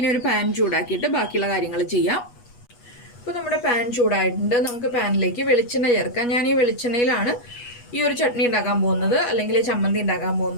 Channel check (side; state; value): right; late; 8.3 ms